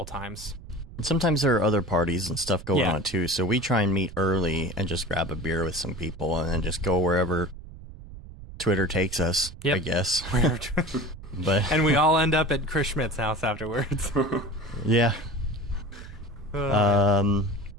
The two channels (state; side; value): noise; right; rumble, 15 dB below the sound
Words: times. And sometimes there are other parties and stuff going Yeah. on too. So we try and meet early and just grab a beer with some people and then just go wherever Twitter takes us, Yep. I guess. But And we all end up at Chris Schmidt's house afterwards. yeah.